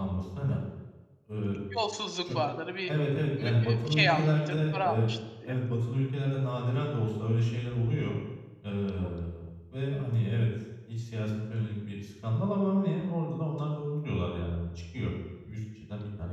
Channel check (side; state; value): both; identical; correlation 1.00